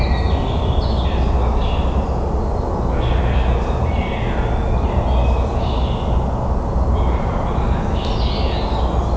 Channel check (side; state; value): both; identical; correlation 1.00